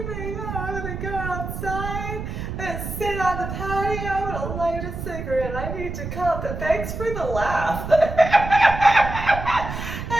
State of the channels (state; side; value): noise; right; rumble, 6 dB below the sound